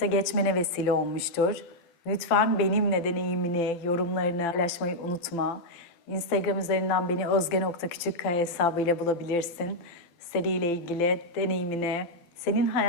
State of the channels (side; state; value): right; late; 12 ms